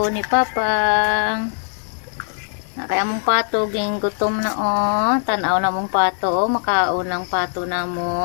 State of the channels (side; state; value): right; silent; 55 dB below the other